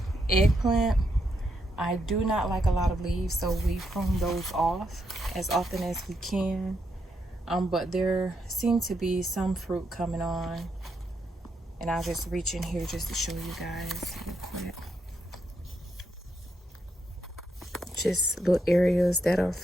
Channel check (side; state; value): both; normal; correlation 0.80